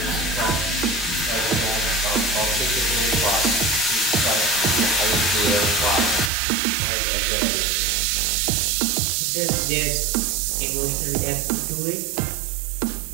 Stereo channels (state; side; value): drops out; left; at 6.3 s